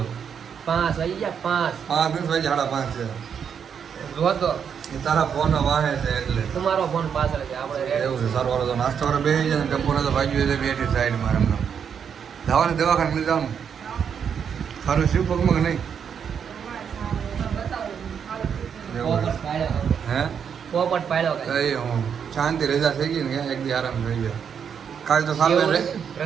5 વાગી ગયા. 5 વાગ્યા 5:30 છે. જો તો એ તારા ફોન વાહે છે એટલે તમારો ફોન પાછળ છે. આપણે એવું છે. સારું વાળો તો નાસ્તો કરવા બેસી જાય ને, ટપ્પુને તો વાગ્યું છે બેઠી સાઈડમાં એમને. જવાનું દવાખાને લઈ જવાનું. સારું શિવ પગમાં કે નહીં? હે પોપટ પાડ્યો કઈ હું શાંતિ રજા થઈ ગઈ ને, એક દી આરામ થઈ ગયો. કાલ તો સારું રે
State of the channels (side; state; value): left; quieter; 7.4 dB